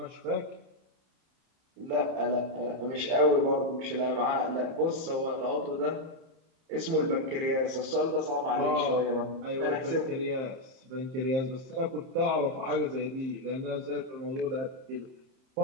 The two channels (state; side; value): late; left; 30 ms